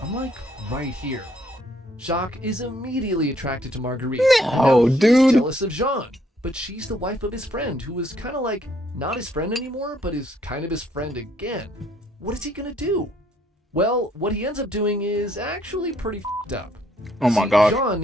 I'm like right here. Jacques is immediately attracted to Marguerite. No, Now he's dude. jealous of Jean, but she's the wife of his friend, who is kind of like not his friend anymore, but is kind of his friend again. What is he gonna do? Well, what he ends up doing is actually pretty f***ed up. Oh my See, god. Jean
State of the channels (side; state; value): both; normal; correlation 0.68